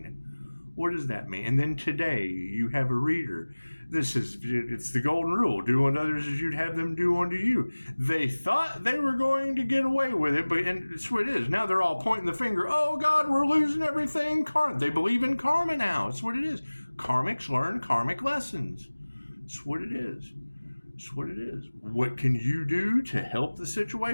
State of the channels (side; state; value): both; inverted; correlation -1.00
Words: What does that mean? And then today you have a reader. It's the golden rule. Do unto others as you'd have them do unto you. They thought they were going to get away with it, and it's what it is. Now they're all pointing the finger. Oh God, we're losing everything. They believe in karma now. It's what it is. Karmics learn karmic lessons. It's what it is. It's what it is. What can you do to help the